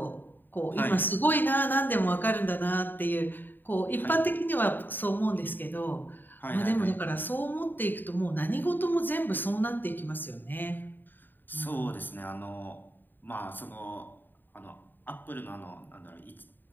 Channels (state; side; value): late; right; 0.092 ms